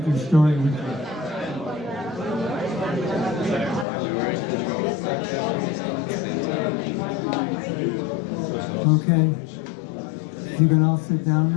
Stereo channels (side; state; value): right; drops out; at 3.9 s